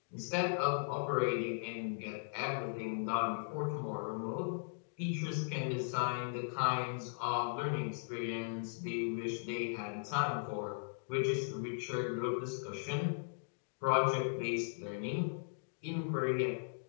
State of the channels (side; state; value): right; silent; digital silence